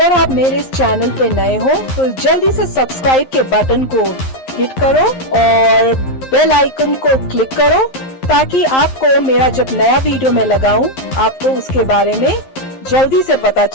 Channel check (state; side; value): late; right; 11 ms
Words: आप मेरे इस चैनल पे नए हो तो जल्दी से सब्सक्राइब के बटन को हिट करो और बेल आइकन को क्लिक करो ताकि आपको मेरा जब नया वीडियो मैं लगाऊं आपको उसके बारे में जल्दी से पता